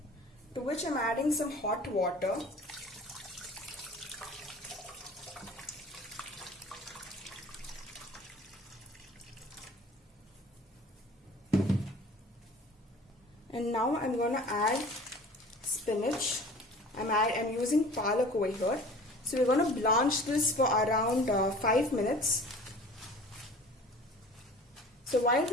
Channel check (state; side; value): normal; both; correlation 0.44